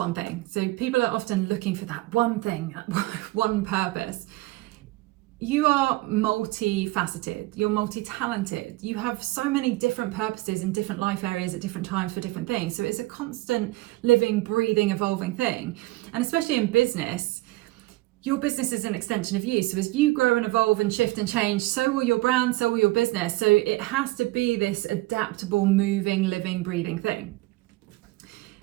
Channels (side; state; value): left; quieter; 19.9 dB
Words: thing. So people are often looking for that one thing, one purpose. You are multifaceted, you're multi-talented, you have so many different purposes in different life areas at different times for different things. So it's a constant living, breathing, evolving thing. And especially in business, your business is an extension of you. So as you grow and evolve and shift and change, so will your brand, so will your business. So it has to be this adaptable, moving, living, breathing thing.